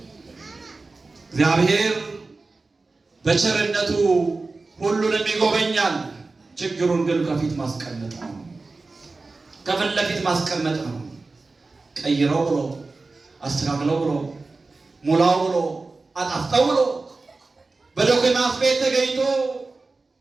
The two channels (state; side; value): quieter; left; 3.7 dB